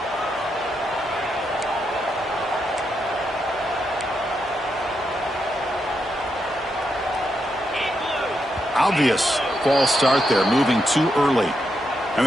Obvious false start there, moving too early. And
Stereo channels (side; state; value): both; normal; correlation 0.82